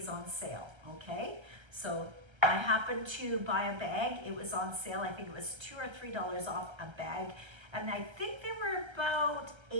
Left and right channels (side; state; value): left; late; 1.3 ms